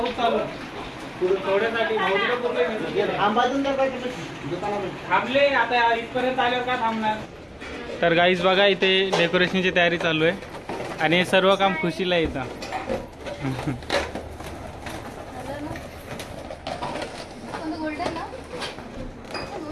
चालू थोड्यासाठी थांबले आता इथपर्यंत आल्यावर का थांबणार. तर गाईज बघा इथे डेकोरेशनची तयारी चालू आहे आणि हे सर्व काम खुशीला येतं.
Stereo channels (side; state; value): both; identical; correlation 1.00